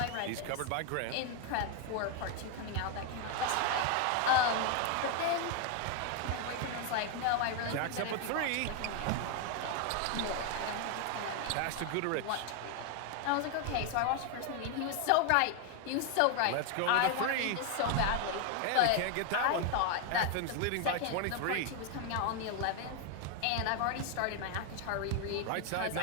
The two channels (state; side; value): different; both; correlation 0.01